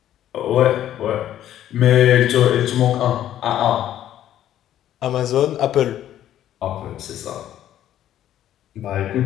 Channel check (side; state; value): right; quieter; 11.8 dB